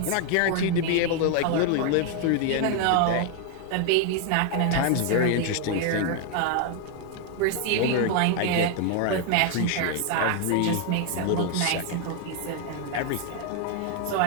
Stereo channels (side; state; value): both; different; correlation 0.00